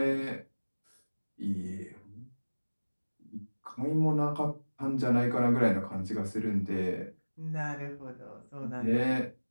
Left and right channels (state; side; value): inverted; both; correlation -1.00